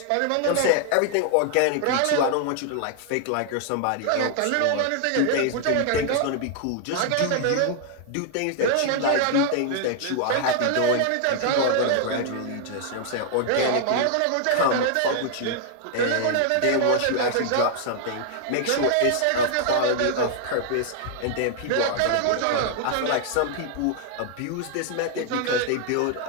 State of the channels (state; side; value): different; both; correlation 0.00